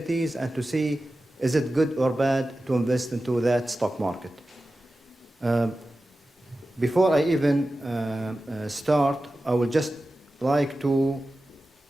and to see is it good or bad to invest into that stock market. Before I even start, I would just like to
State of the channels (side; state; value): both; normal; correlation 0.94